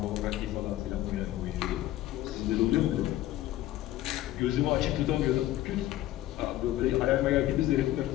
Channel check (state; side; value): quieter; right; 14.7 dB